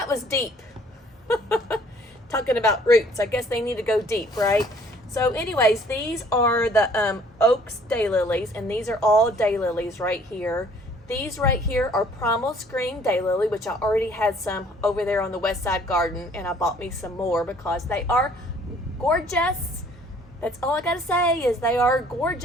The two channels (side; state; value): both; normal; correlation 0.58